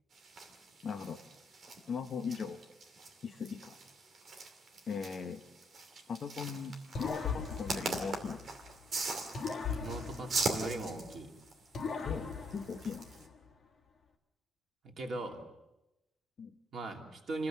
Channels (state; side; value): normal; both; correlation 0.73